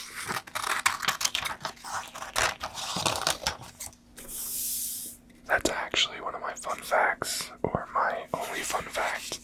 That's actually one of my fun facts, or my only fun fact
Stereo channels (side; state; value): both; identical; correlation 1.00